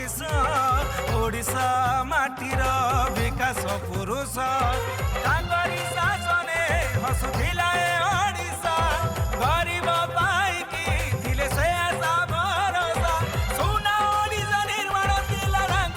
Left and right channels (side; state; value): both; identical; correlation 1.00